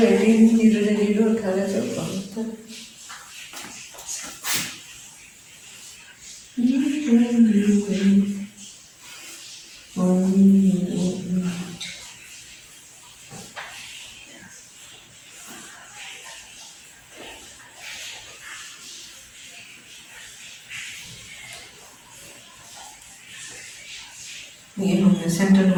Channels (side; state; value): both; identical; correlation 1.00